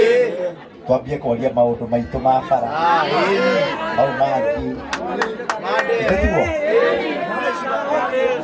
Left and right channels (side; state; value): both; identical; correlation 1.00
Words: twambie kwaria maũndũ maitũ ma bara mau mangĩ tiguo